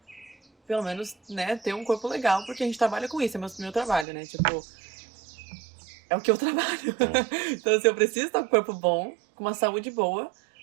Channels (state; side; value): drops out; left; at 4.0 s